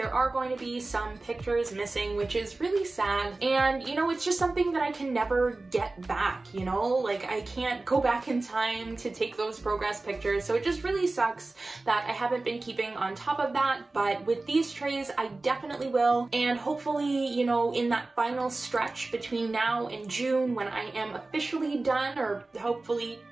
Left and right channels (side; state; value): left; quieter; 3.2 dB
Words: are going to be some pictures missing, which is really sad. And, you know, it's just something that I can never get back, you know? Like, I can't go back in time to take those progress pictures, so it just really sucks that I haven't been keeping on top of that. But with these trays, I definitely will, and hopefully, you know, in that final stretch between now and June, when I am officially done, or hopefully